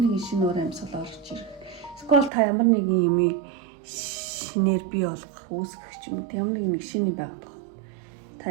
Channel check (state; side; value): drops out; left; at 2.3 s